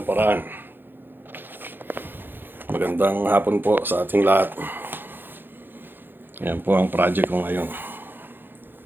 paraan. Magandang hapon po sa ating lahat. Yan po ang project ko ngayon.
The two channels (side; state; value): left; late; 0.097 ms